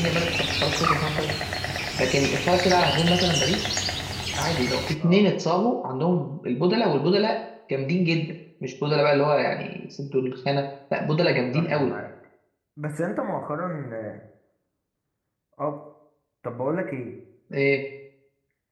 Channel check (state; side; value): identical; both; correlation 1.00